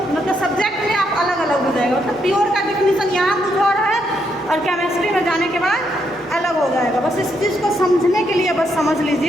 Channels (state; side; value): normal; both; correlation 0.77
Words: सब्जेक्ट में आप अलग अलग हो जाएगा, मतलब प्योर का डिफिनीसन यहाँ कुछ और है और केमिस्ट्री में जाने के बाद अलग हो जाएगा। बस इस चीज़ को समझने के लिए बस समझ